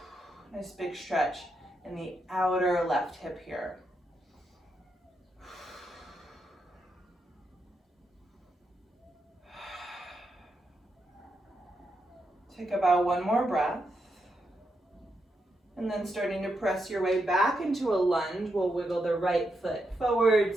Nice big stretch in the outer left hip here. Take about one more breath. And then starting to press your way back into a lunge, we'll wiggle the right foot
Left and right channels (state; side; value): normal; both; correlation 0.83